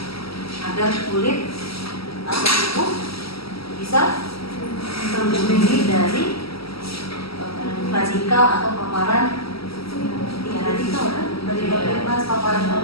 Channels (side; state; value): right; late; 0.75 ms